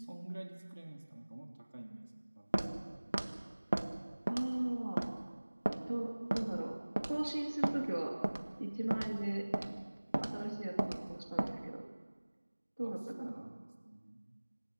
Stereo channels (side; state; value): both; inverted; correlation -1.00